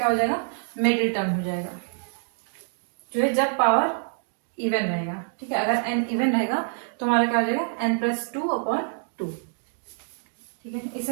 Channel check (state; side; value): silent; left; digital silence